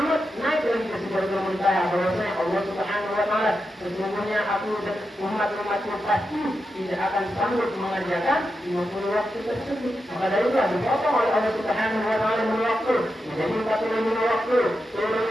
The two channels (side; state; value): both; normal; correlation 0.88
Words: naik lagi ke Sidratul Muntaha, bahwasanya Allah Subhanahu wa taala, sesungguhnya aku dan umat-umatku pasti tidak akan sanggup mengerjakan 50 waktu tersebut. Maka dari itu dipotong oleh Allah Subhanahu wa taala waktu menjadi 45 waktu. Turun